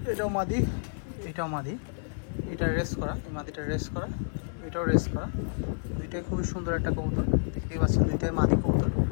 এটাও মাদি, এটাও মাদি, এটা রেস করা, এই মাদিটা রেস করা, এটাও রেস করা। দুইটাই খুবই সুন্দর একটা কবুতর, দেখতেই পাচ্ছেন দুইটাই মাদি কবুতর।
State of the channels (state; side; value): silent; right; 58 dB below the other